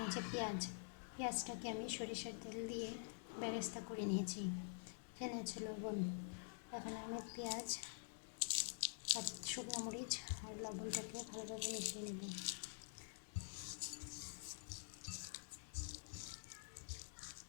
আছে পেঁয়াজটাকে আমি সরিষার তেল দিয়ে বেরেস্তা করে নিয়েছি। এখানে আছে লবণ। এখন আমি পেঁয়াজ আর শুকনো মরিচ আর লবণটাকে ভালোভাবে মিশিয়ে নেব।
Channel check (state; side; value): silent; right; digital silence